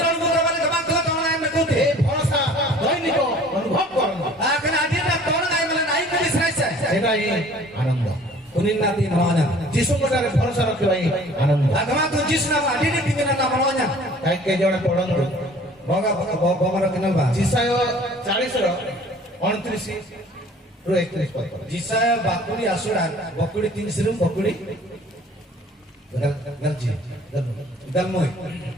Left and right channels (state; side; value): normal; both; correlation 0.51